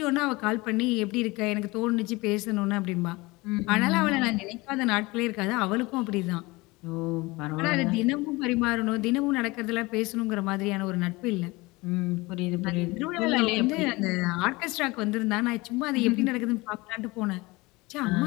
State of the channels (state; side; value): quieter; right; 22.9 dB